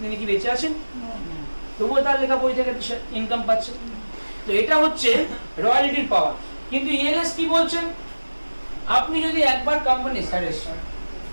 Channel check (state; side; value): inverted; both; correlation -1.00